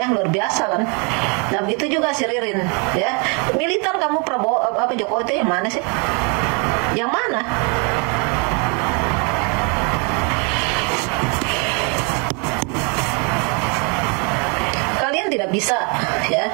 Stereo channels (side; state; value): left; quieter; 34.4 dB